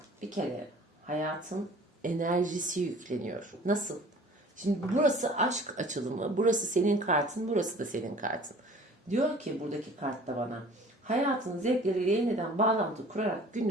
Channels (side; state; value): both; normal; correlation 0.48